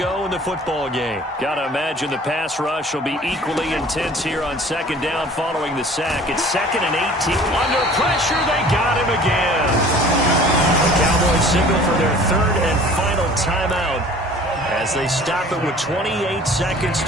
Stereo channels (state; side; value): normal; both; correlation 0.48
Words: in the football game. Got to imagine the pass rush will be equally intense here on 2nd down following the sack. It's 2nd and 18. Under pressure, they got him again. The Cowboys signal for their 3rd and final timeout as they stop it with 28 seconds